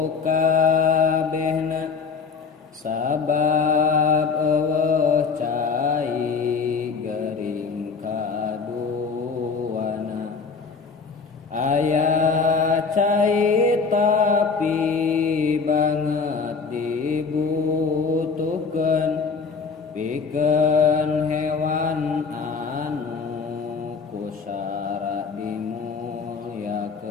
kabehna, sabab eueuh cai gering kaduana. Aya cai tapi banget dibutuhkeun pikeun hewan anu kusara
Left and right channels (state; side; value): quieter; right; 5.1 dB